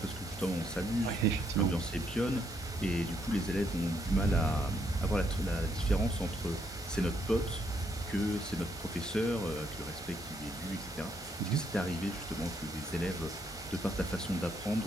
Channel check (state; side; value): normal; both; correlation 0.74